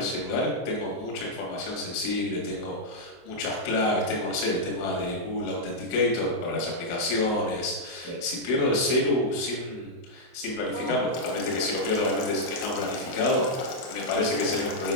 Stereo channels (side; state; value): right; late; 24 ms